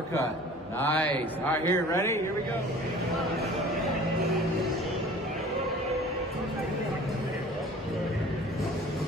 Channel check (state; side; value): normal; both; correlation 0.45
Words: Nice. All right, here, ready? Here we go.